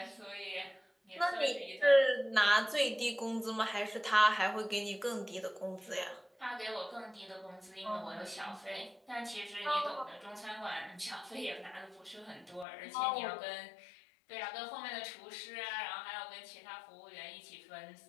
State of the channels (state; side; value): drops out; right; at 12.7 s